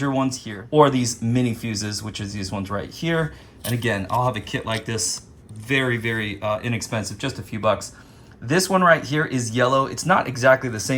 ones here or these mini fuses, which is these ones right here. And again, I'll have a kit like this, very, very inexpensive, just a few bucks. This one right here is yellow. It's not exactly the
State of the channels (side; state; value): both; identical; correlation 1.00